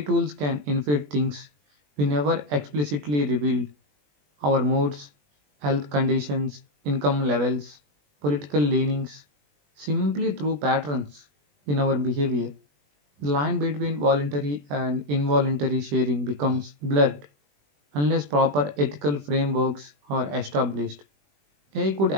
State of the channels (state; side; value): late; left; 20 ms